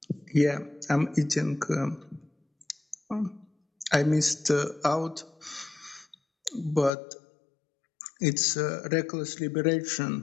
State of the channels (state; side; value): drops out; right; at 6.9 s